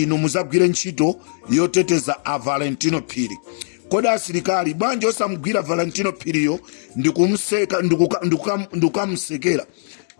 muzagwire ntchito yoteteza a Valentino Phiri. Kodi asilikali bwanji osamugwira Valentino Phiriyo ndikumseka ndikukamsekera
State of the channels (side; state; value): right; silent; 66 dB below the other